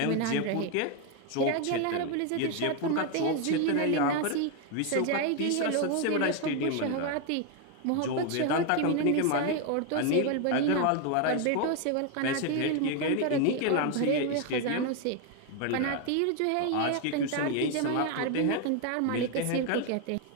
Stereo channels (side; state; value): both; different; correlation 0.01